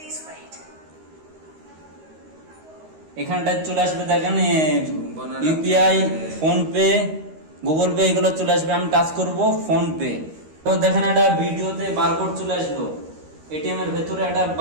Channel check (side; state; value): left; late; 13 ms